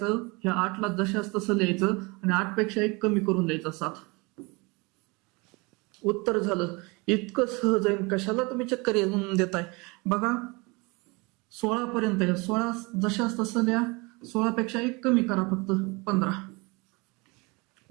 ह्या 8ला जशाच तसं लिहायचं आणि 8 पेक्षा 1 कमी करून द्यायचं, 7. उत्तर झालं. इतकं सहज आहे, कशाला तुम्ही चक्कर येऊन देताय. बघा, 16 पर्यंत आहे, 16 जशाच तसं लिहा, 16 पेक्षा 1 कमी करा, फक्त 15.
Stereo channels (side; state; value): left; quieter; 27.0 dB